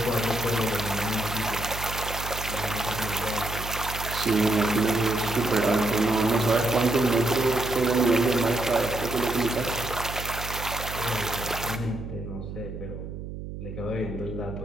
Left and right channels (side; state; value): right; noise; hum, 9 dB below the sound